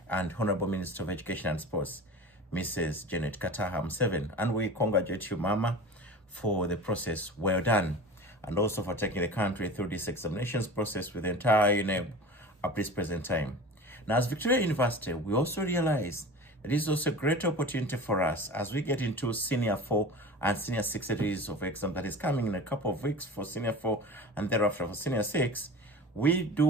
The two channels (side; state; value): both; normal; correlation 0.35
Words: and Honorable Minister of Education and Sports, Mrs. Janet Kataha Museveni. And we congratulate you, Mama, for the process well done, and also for taking the country through this examinations process with the entire UNEB at this present time. Now, as Victoria University, we also realize that this is also a great opportunity for us as we get into Senior 4 and Senior 6 series of exam that is coming in a couple of weeks for Senior 4 and thereafter for Senior 6. We do